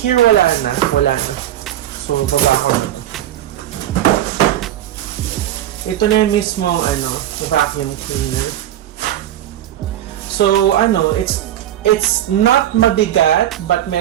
wala na. So, baba ko na. Ito na yung mismo vacuum cleaner. So, it's not mabigat, but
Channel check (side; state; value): left; quieter; 12.2 dB